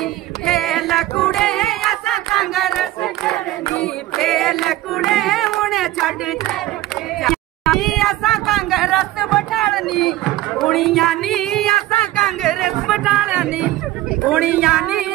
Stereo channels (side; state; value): left; quieter; 15.9 dB